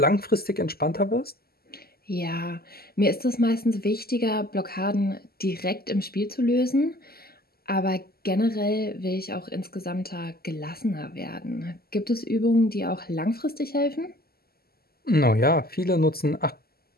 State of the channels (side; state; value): right; late; 0.45 ms